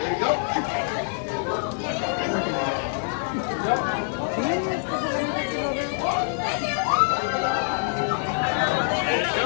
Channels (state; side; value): silent; right; digital silence